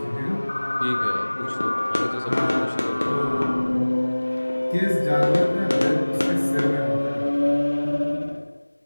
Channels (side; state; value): both; inverted; correlation -1.00